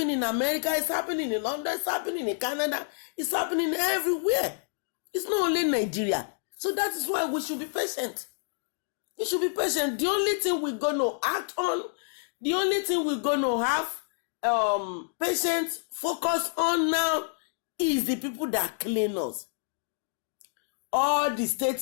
in America, it's happening in London, it's happening in Canada, it's happening everywhere. It's not only Nigeria. So that is why we should be patient. You should be patient. The only thing we're going to act on, the only thing we're going to have patience focus on now is the people that clean us. All the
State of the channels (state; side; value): silent; right; digital silence